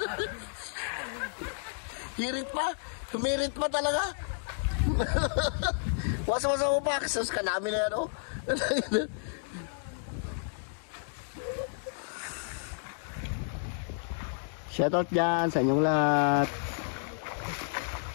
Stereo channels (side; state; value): right; silent; digital silence